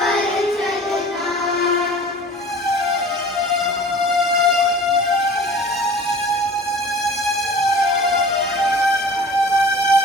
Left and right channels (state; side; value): normal; both; correlation 0.43